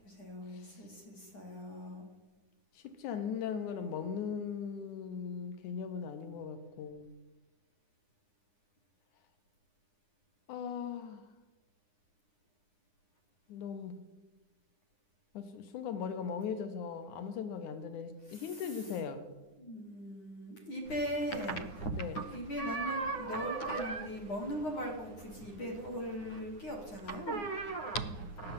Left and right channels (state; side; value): late; right; 9.8 ms